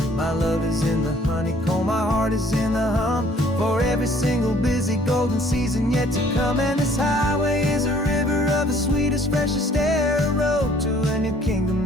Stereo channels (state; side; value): normal; both; correlation 0.58